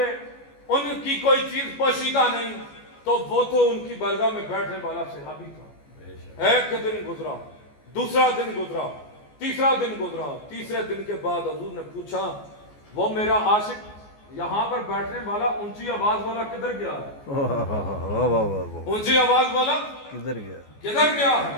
ان کی کوئی چیز پوشیدہ نہیں، تو وہ تو ان کی بارگاہ میں بیٹھنے والا صحابی تھا۔ ایک دن گزرا، دوسرا دن گزرا، تیسرا دن گزرا، تیسرے دن کے بعد حضور نے پوچھا وہ میرا عاشق یہاں پر بیٹھنے والا اونچی آواز والا کدھر گیا ہے؟ اونچی آواز والا کدھر گیا؟ کدھر گیا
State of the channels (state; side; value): late; right; 14 ms